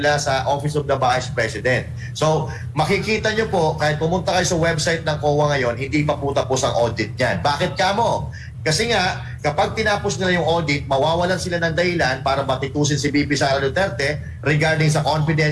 sa Office of the Vice President. So, makikita nyo po, kahit pumunta kayo sa website ng COA ngayon, hindi pa po tapos ang audit niyan. Bakit kamo? Kasi nga, kapag tinapos nila yung audit, mawawalan sila ng dahilan para batikusin si VP Sara Duterte regarding sa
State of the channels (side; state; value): both; identical; correlation 1.00